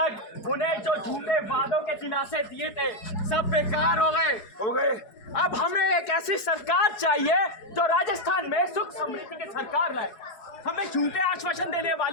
उन्हें जो झूठे वादों के दिलासे दिए थे सब बेकार हो गए। अब हमें एक ऐसी सरकार चाहिए जो राजस्थान में सुख समृद्धि की सरकार लाए। हमें झूठे आश्वासन देने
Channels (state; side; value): late; right; 4.7 ms